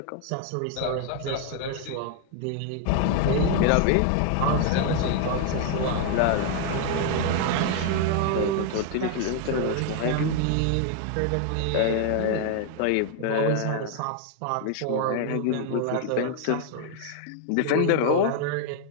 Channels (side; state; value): both; different; correlation 0.00